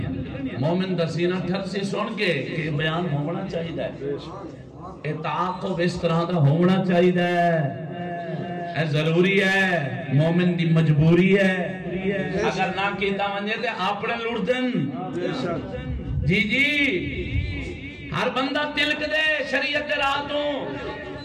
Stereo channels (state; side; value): identical; both; correlation 1.00